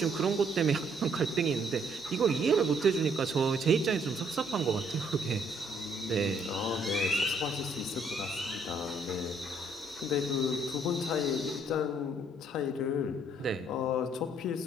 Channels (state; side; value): normal; both; correlation 0.66